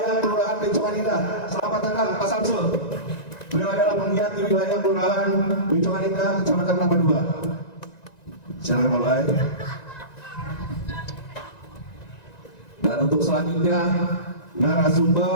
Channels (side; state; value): right; late; 1.9 ms